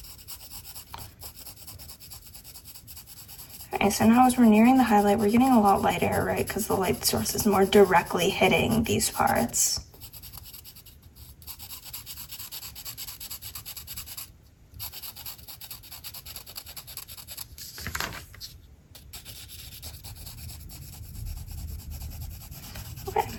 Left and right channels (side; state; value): both; identical; correlation 1.00